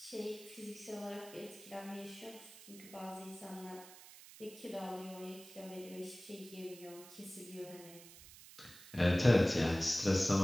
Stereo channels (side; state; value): right; noise; hiss, 18 dB below the sound